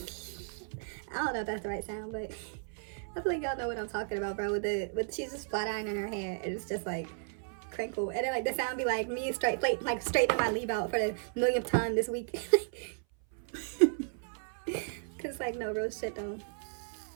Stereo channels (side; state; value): left; silent; 55 dB below the other